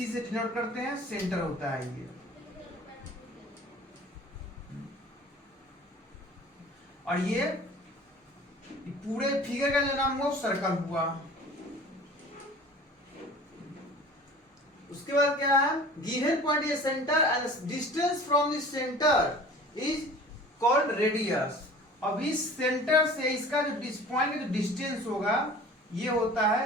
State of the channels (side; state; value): both; normal; correlation 0.44